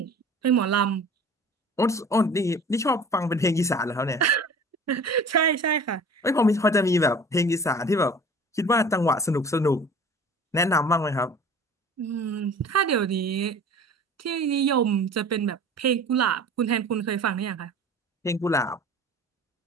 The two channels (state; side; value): normal; both; correlation 0.43